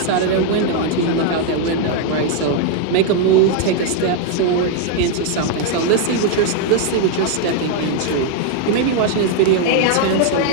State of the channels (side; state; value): both; different; correlation 0.00